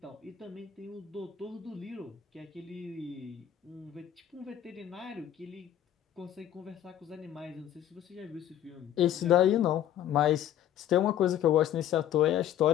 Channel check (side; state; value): right; quieter; 11.1 dB